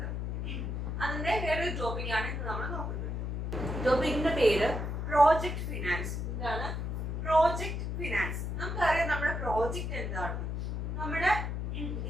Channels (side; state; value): left; noise; hum, 2 dB below the sound